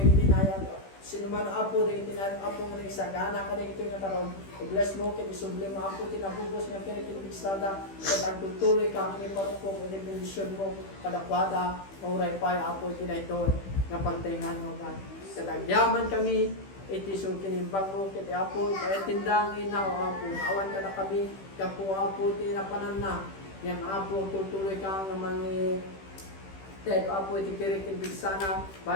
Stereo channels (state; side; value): late; right; 15 ms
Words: itinayag sino man apo na itinayag apo nga nagsagana ka ito nga taron i-bless mo ket isubli mo apo tinabubos nga kirek tin pigsada ket agtutuloy ka ang iparupok iti bendisyon mo kadakwada mauray pay apo itinayton nga pagtingan mo God ket agyaman kami iti sung kinimbang mo ket apo iti tindang ina o apo awan ka na kami kapo apo ti napanan na yan apo tutuloy ka nga mangi ted apo iti kirek tin bigsana